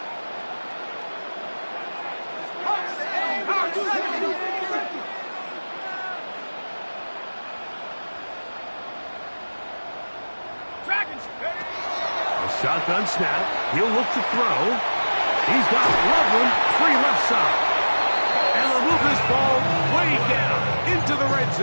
Shotgun snap. He'll look to throw. He's got Loveland free left side. And they'll move this ball way down into the red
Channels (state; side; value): inverted; both; correlation -1.00